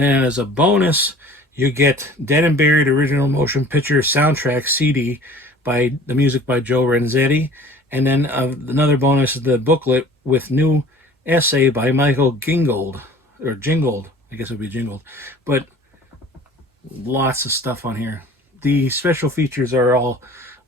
then as a bonus, you get Dead and Buried original motion picture soundtrack CD by the music by Joe Renzetti. And then another bonus is the booklet with new essay by Michael Gingold, or Jingold, I guess it would be Jingold. But lots of stuff on here. The special features are all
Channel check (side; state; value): both; normal; correlation 0.46